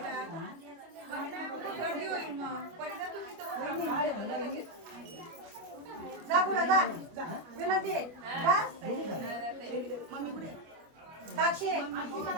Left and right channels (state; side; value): late; left; 25 ms